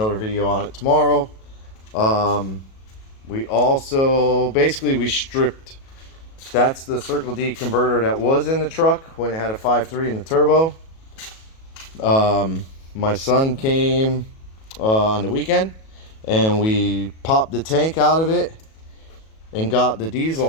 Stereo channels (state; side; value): late; right; 37 ms